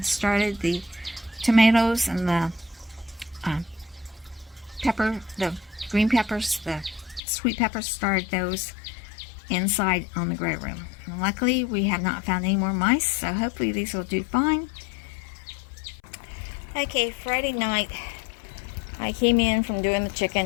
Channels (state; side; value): drops out; right; at 7.2 s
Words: started the tomatoes and the the green peppers, the sweet peppers, started those inside on the grow room. And luckily we have not found any more mice, so hopefully these will do fine. Okay, Friday night I came in from doing the